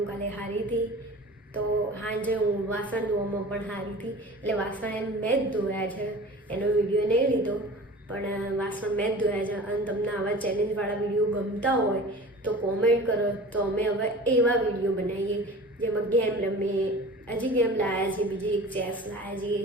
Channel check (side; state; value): both; normal; correlation 0.39